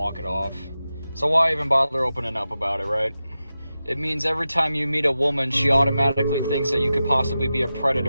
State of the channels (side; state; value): both; inverted; correlation -0.92